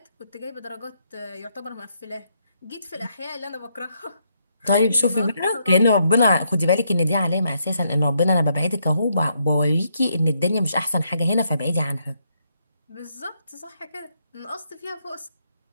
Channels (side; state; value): both; inverted; correlation -0.76